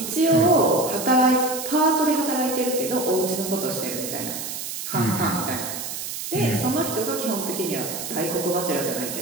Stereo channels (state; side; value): noise; right; hiss, 6 dB below the sound